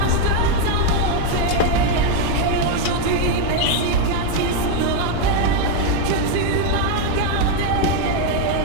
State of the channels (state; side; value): different; both; correlation 0.01